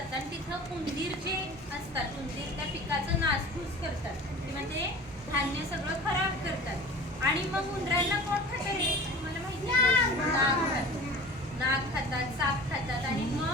आणि तिथं उंदीर जे असतात, उंदीर त्या पिकाचं नासधूस करतात किंवा ते धान्य सगळं खराब करतात. आणि मग उंदरांना कोण खातं रे? मला माहिती आहे, नाग खातात, साप खातात. आणि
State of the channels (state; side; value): normal; both; correlation 0.39